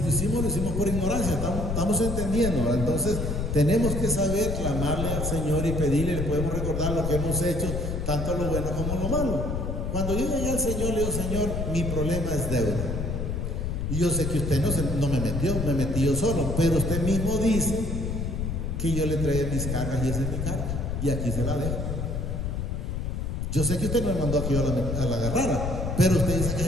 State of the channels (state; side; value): noise; left; rumble, 2 dB below the sound